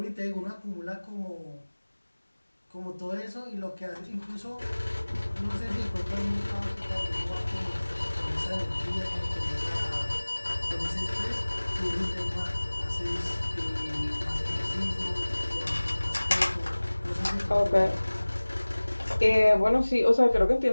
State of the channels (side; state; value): both; inverted; correlation -1.00